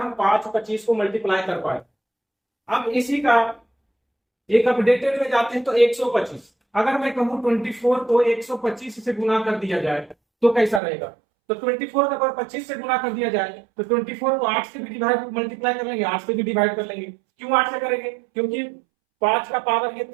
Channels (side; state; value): left; drops out; at 10.8 s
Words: 5 और 25 को मल्टीप्लाई कर पाए। अब इसी का एक अपडेटेड में जाते हैं तो 125। अगर मैं कहूं 24 को 125 से गुना कर दिया जाए तो कैसा रहेगा? तो 24 को अगर 25 से गुना कर दिया जाए तो 24 को 8 से भी डिवाइड मल्टीप्लाई कर लेंगे, 8 से भी डिवाइड कर लेंगे। क्यों 8 से करेंगे? क्योंकि 5 का पावर ये